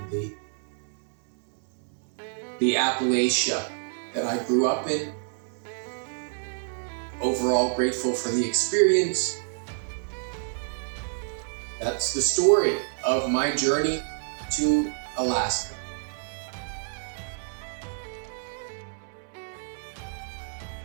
the Appalachia that I grew up in. Overall grateful for the experience. That's the story of my journey to Alaska.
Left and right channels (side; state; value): left; silent; 59 dB below the other